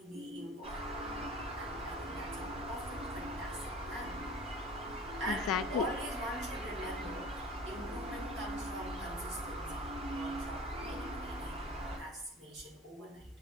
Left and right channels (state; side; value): normal; both; correlation 0.41